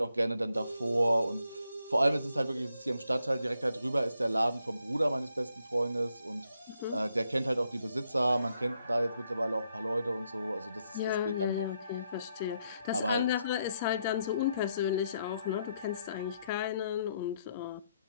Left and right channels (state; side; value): inverted; both; correlation -0.77